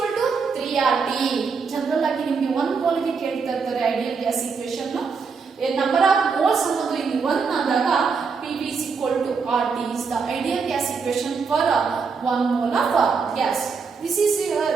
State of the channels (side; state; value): left; quieter; 5.3 dB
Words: to 3 RT. General ಆಗಿ ನಿಮಗೆ 1 mole ಗೆ ಕೇಳ್ತಾ ಇರ್ತಾರೆ ideal gas equation. Number of moles ಅನ್ನೋದು ಇಲ್ಲಿ 1 ಆದಾಗ PV is equal to RT is the ideal gas equation for 1 mole of gas. This